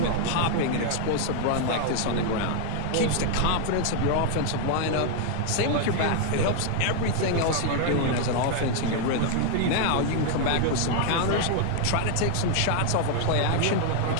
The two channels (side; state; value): both; different; correlation 0.00